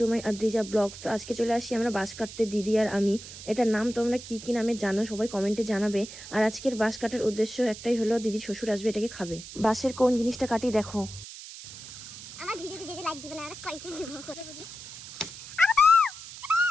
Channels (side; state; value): right; noise; hiss, 13 dB below the sound